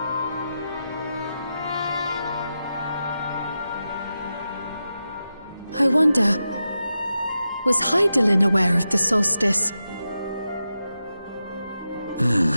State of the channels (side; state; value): both; inverted; correlation -0.89